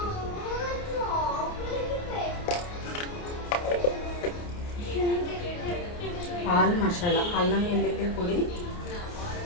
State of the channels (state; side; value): late; right; 29 ms